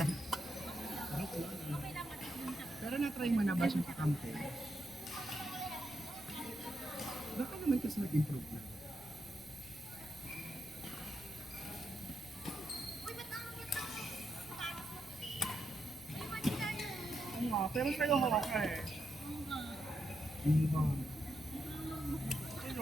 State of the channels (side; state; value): right; noise; rumble, 24 dB below the sound